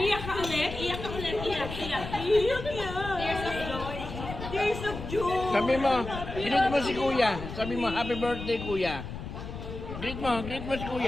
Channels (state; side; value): noise; left; rumble, 9 dB below the sound